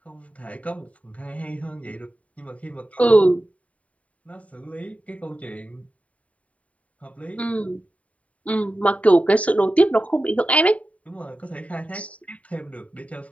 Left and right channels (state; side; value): late; right; 0.067 ms